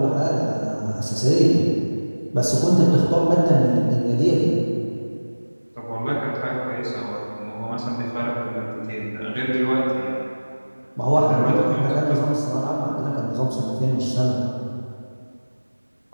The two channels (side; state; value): both; inverted; correlation -1.00